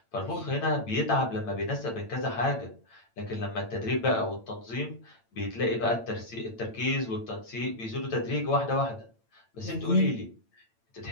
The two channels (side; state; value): right; late; 8.9 ms